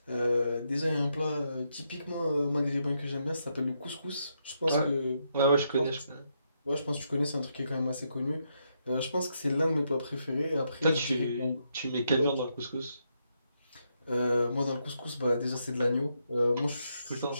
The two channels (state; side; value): inverted; both; correlation -0.80